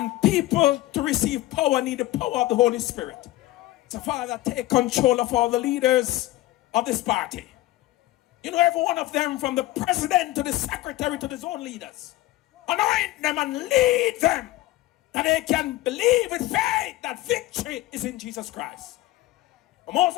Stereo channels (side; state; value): right; quieter; 16.9 dB